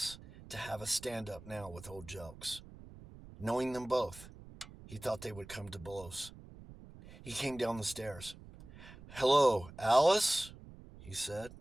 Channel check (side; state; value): right; noise; rumble, 17 dB below the sound